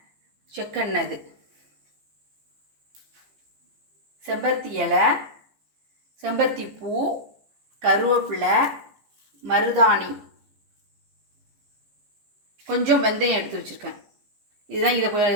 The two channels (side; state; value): left; late; 14 ms